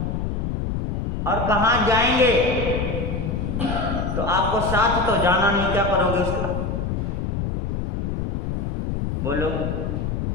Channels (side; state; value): left; noise; rumble, 1 dB below the sound